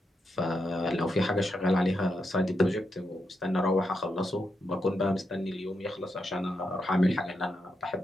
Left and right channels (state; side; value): normal; both; correlation 0.84